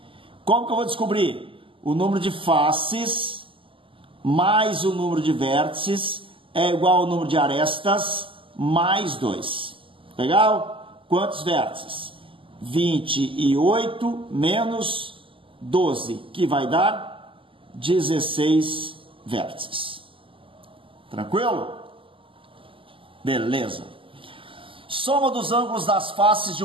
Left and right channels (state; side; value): late; left; 0.25 ms